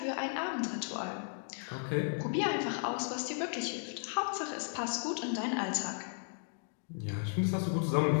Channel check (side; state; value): right; silent; 54 dB below the other